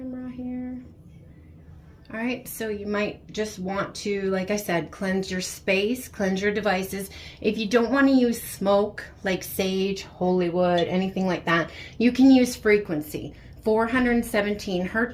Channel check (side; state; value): both; identical; correlation 1.00